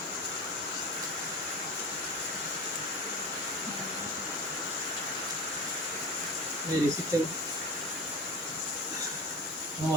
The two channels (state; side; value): normal; both; correlation 0.32